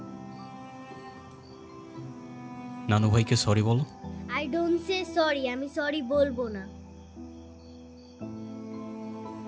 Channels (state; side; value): identical; both; correlation 1.00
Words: নানু ভাইকে সরি বলো। আই ডোন্ট সে সরি, আমি সরি বলবো না।